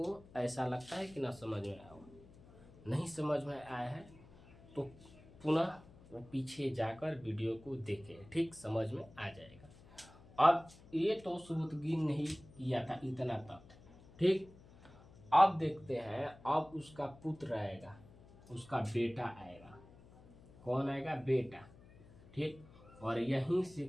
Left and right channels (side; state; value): left; noise; hum, 22 dB below the sound